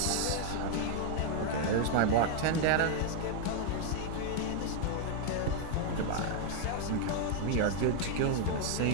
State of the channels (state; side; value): different; both; correlation 0.00